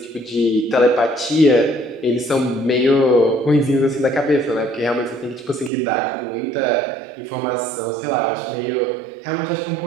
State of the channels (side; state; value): left; drops out; at 5.7 s